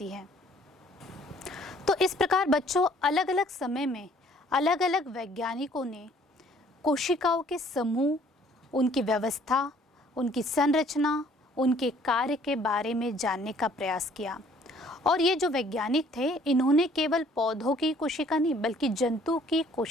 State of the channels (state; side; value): normal; both; correlation 0.58